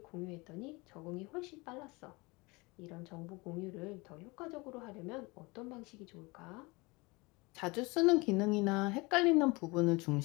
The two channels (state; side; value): quieter; right; 25.4 dB